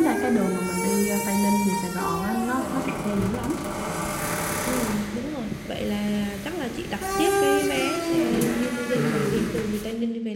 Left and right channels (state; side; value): identical; both; correlation 1.00